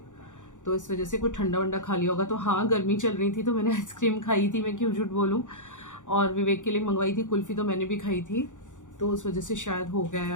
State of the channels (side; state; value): right; late; 0.86 ms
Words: तो इस वजह से कुछ ठंडा वंडा खा लिया होगा। तो हाँ, गर्मी चल रही थी तो मैंने आइसक्रीम खाई थी, मैं क्यों झूठ बोलूँ। और विवेक के लिए मंगवाई थी कुल्फ़ी, तो मैंने भी खाई थी, तो उस वजह से शायद हो गया है,